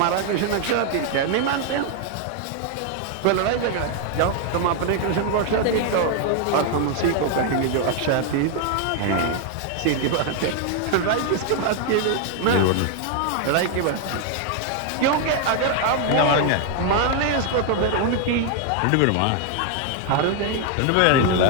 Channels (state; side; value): different; both; correlation 0.00